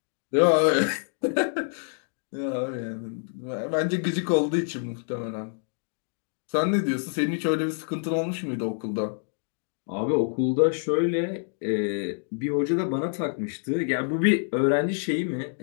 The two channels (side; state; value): right; silent; digital silence